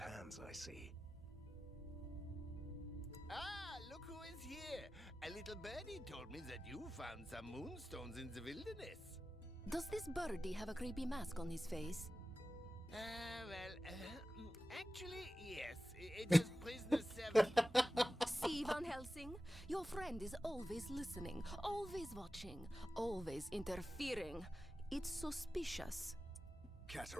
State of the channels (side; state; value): both; normal; correlation 0.94